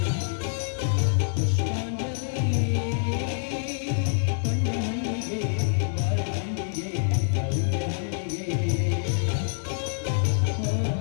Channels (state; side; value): silent; right; digital silence